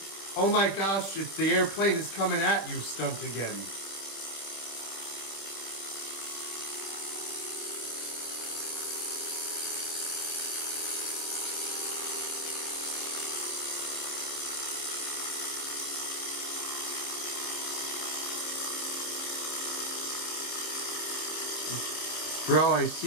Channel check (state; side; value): late; right; 25 ms